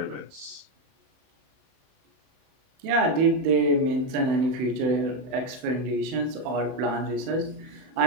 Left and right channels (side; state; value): left; late; 31 ms